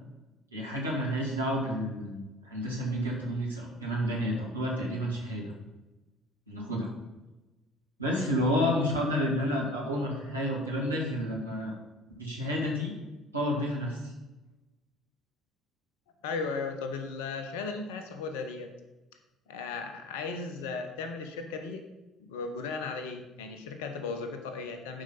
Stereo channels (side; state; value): both; normal; correlation 0.41